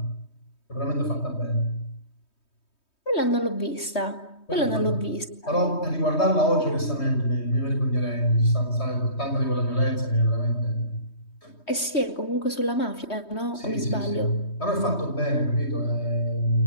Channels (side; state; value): right; late; 3.2 ms